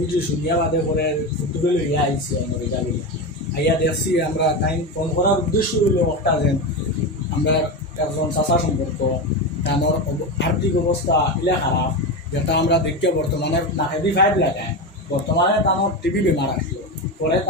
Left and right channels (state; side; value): normal; both; correlation 0.18